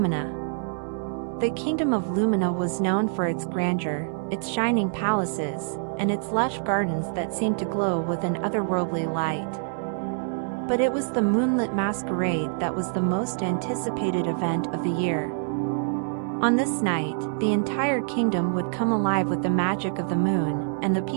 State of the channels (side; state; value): left; silent; digital silence